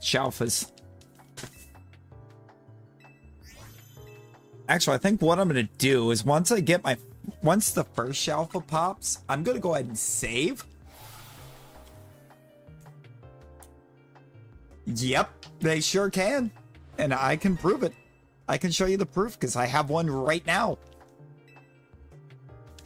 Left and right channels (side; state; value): both; identical; correlation 1.00